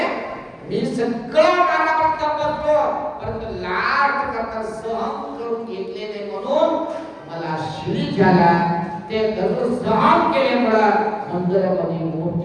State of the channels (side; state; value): both; identical; correlation 1.00